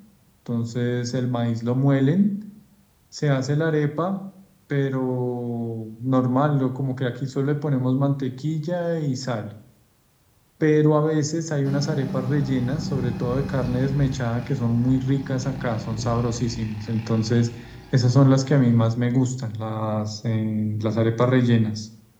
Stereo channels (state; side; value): identical; both; correlation 1.00